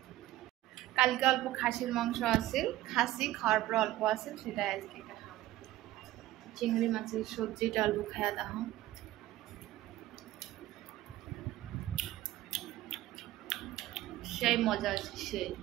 কালকে অল্প খাসির মাংস আছে, খাসি খাওয়ার পর অল্প আছে, সেটা আজকে খাবো। চিংড়ি মাছের সবজিটা অল্প খায়া দাও। সেই মজা আছে সেই।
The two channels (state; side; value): quieter; left; 15.6 dB